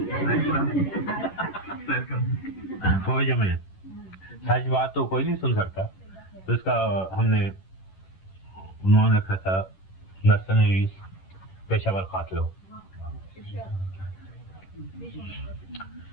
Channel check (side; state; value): right; late; 11 ms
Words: فوج میں سچ بات تو کوئی نہیں سن سکتا، تو اس کا ہم نے عنوان رکھا تھا مرسنریز، پیشہ ور قاتلوں.